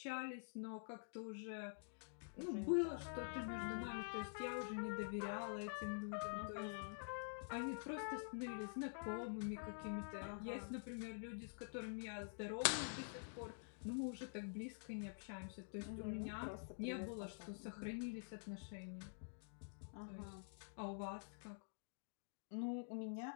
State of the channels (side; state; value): right; silent; digital silence